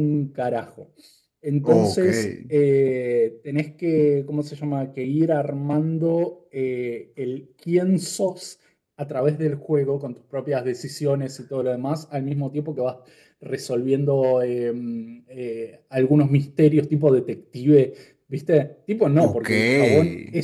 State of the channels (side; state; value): both; identical; correlation 1.00